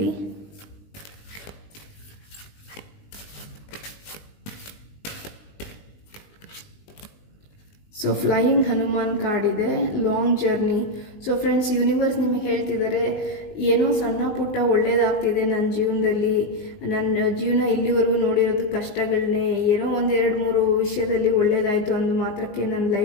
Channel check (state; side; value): late; right; 20 ms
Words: ಸೊ ಫ್ಲೈಯಿಂಗ್ ಹನುಮಾನ್ ಕಾರ್ಡ್ ಇದೆ, long journey. So friends, universe ನಿಮಗೆ ಹೇಳ್ತಿದ್ದಾರೆ, ಏನೋ ಸಣ್ಣ ಪುಟ್ಟ ಒಳ್ಳೇದಾಗ್ತಿದೆ ನನ್ನ ಜೀವನದಲ್ಲಿ. ನನ್ನ ಜೀವನ ಇಲ್ಲಿವರೆಗೂ ನೋಡಿರೋದು ಕಷ್ಟಗಳನ್ನೇ, ಏನೋ 1-2-3 ವಿಷಯದಲ್ಲಿ ಒಳ್ಳೇದಾಯಿತು ಅಂದ ಮಾತ್ರಕ್ಕೆ ನನ್ನ